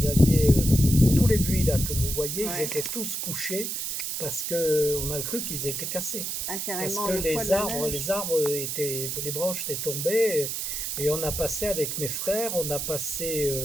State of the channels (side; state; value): right; noise; hiss, 3 dB below the sound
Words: aviez tous les buis là que vous voyez, ils ouais. étaient tous couchés parce que on a cru qu'ils étaient cassés. Ah, Parce carrément, que le poids de la neige. les branches étaient tombées et on a passé avec mes frères, on a passé